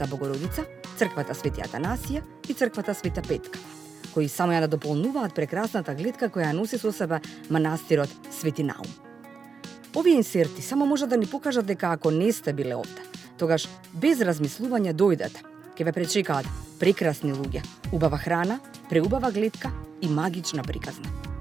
Богородица, црквата Свети Атанасија и црквата Света Петка, кои само ја да дополнуваат прекрасната гледка која носи со себе манастирот Свети Наум. Овие инсерти само може да ни покажат дека ако не сте биле овде, тогаш без размислување дојдете, ќе ве пречекаат прекрасни луѓе, убава храна, преубава гледка и магична приказна.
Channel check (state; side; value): quieter; left; 5.4 dB